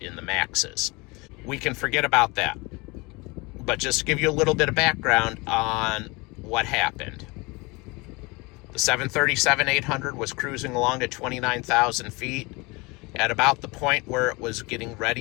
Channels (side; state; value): right; quieter; 25.9 dB